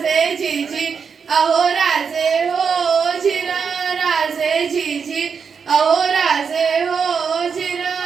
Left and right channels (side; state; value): left; quieter; 6.2 dB